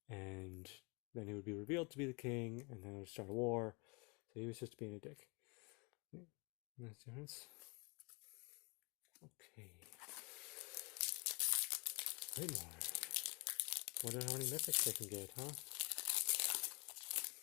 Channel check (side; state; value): right; quieter; 27.6 dB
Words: and then he would be revealed to be the king, and then it would start a war. So he was just being a dick. That's the difference. Okay. Wait more. Wonder how many mythics they can get, huh?